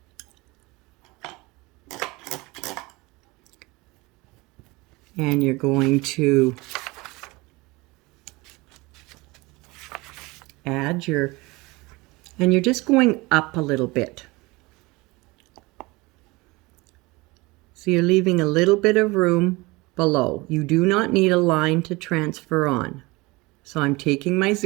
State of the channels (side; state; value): left; quieter; 23.3 dB